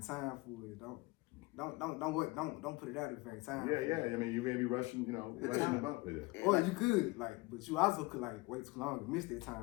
time for it, don't put it out if it ain't time. Yeah. I mean, you may be rushing, rushing about with it. Or you could, but you also could like wait too long and miss that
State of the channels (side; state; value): right; quieter; 22.9 dB